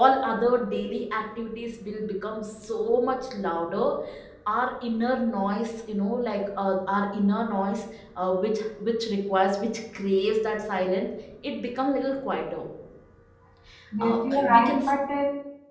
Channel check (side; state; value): both; identical; correlation 1.00